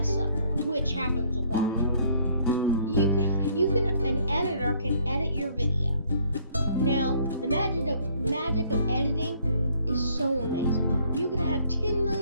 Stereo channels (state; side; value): inverted; both; correlation -0.62